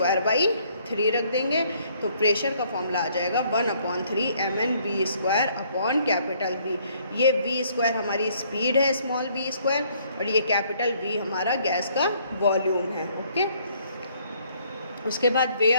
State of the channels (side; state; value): both; inverted; correlation -0.64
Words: रख देंगे, तो प्रेशर का फॉर्मूला आ जाएगा 1/3 mnV²/V। ये V² हमारी स्पीड है, स्मॉल v², और ये कैपिटल V हमारा गैस का वॉल्यूम है, ओके। उसके बाद